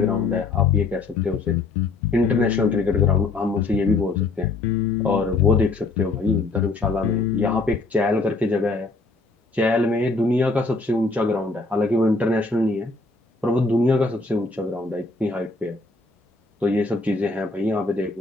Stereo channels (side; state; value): right; quieter; 3.6 dB